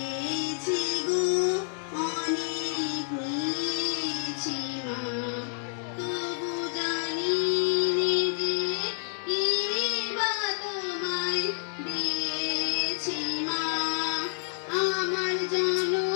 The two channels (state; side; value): silent; right; digital silence